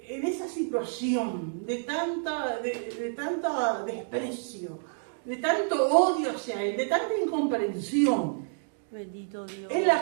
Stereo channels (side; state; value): left; silent; digital silence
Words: esa situación de tanta desprecio, de tanto odio hacia él, de tanta incomprensión. Bendito Dios. En